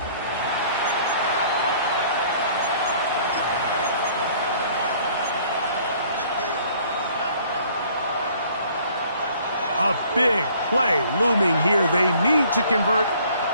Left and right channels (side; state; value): both; inverted; correlation -0.57